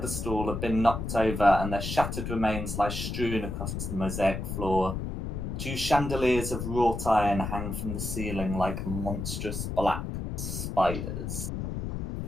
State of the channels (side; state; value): left; noise; rumble, 4 dB below the sound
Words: have been knocked over, and their shattered remains lie strewn across the mosaic floor. 2 chandeliers of wrought iron hang from the ceiling like monstrous black spiders.